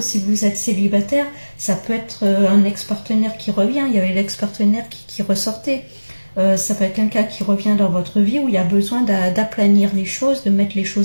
vous êtes célibataire, ça peut être un ex-partenaire qui revient. Il y avait l'ex-partenaire qui ressortait. Ça peut être quelqu'un qui revient dans votre vie où il y a besoin d'aplanir les choses, de mettre les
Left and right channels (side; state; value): both; inverted; correlation -1.00